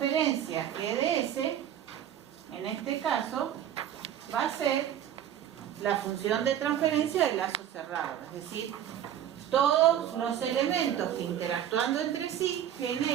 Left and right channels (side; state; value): left; quieter; 10.4 dB